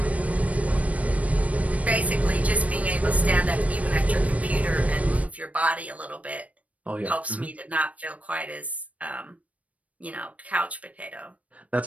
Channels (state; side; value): late; left; 0.067 ms